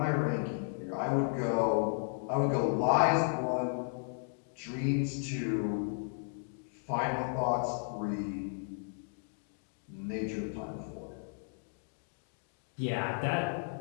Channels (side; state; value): right; silent; 55 dB below the other